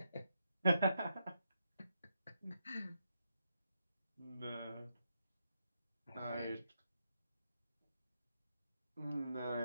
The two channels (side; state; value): both; inverted; correlation -0.83